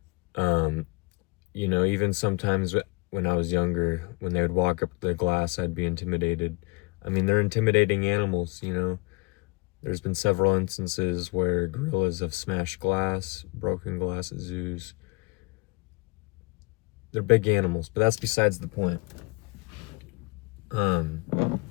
Even sometimes when I was younger, when they would walk up the glass, I'd be intimidated. I mean, they're intimidating animals. There's been several instances where gorillas have smashed glass, broken glass at zoos. They're big animals, but that's besides the point.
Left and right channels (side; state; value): right; quieter; 25.7 dB